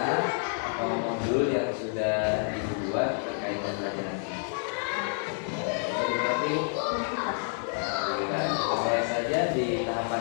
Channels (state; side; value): silent; right; 56 dB below the other